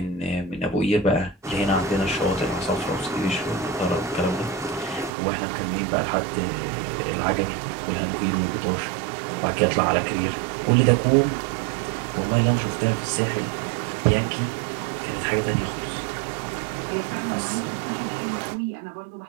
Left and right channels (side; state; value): left; drops out; at 5.1 s